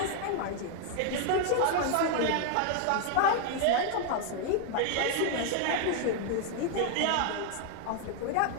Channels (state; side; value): different; both; correlation 0.00